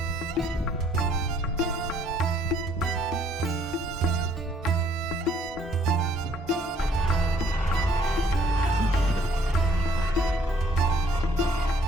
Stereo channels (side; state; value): both; normal; correlation 0.63